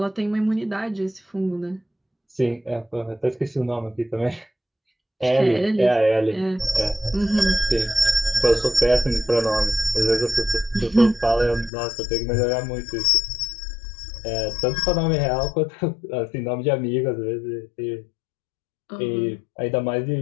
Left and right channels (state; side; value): drops out; right; at 11.7 s